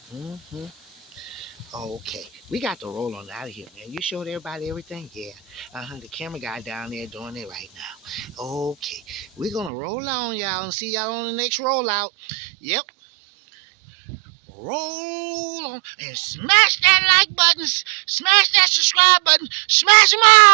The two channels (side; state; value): left; drops out; at 9.7 s